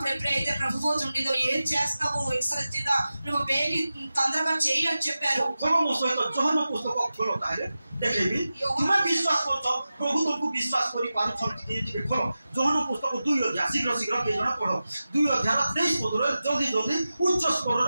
ఎప్పుడైతే ప్రభువు ఉండిదో ఏం చేస్తావు ఇస్కరియోతు నువ్వు బేగి తొందరగా చెయ్యి అని చెప్పారు. देखेबी तुम्हें विश्वास कर प्रभु तुमको विश्वास करी खोलो जोहन पुस्तक 2 अध्याय शीघ्र शीघ्र के जण पढ़ो 2 अध्याय 23 पद रे जल्दी जल्दी उच्च स्वर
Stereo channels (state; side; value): inverted; both; correlation -0.94